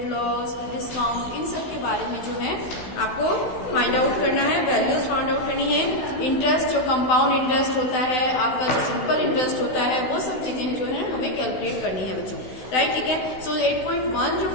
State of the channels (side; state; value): right; late; 16 ms